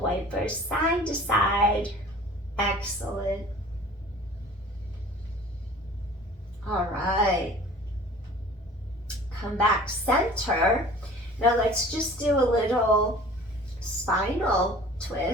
wiper side to side. Excellent. All right. Come back center. Now let's just do a little spinal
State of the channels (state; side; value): normal; both; correlation 0.46